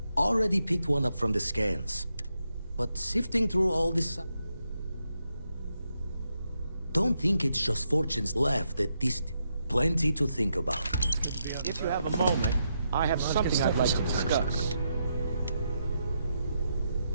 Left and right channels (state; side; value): inverted; both; correlation -0.82